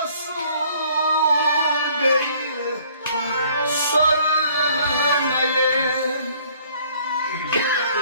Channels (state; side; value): inverted; both; correlation -0.58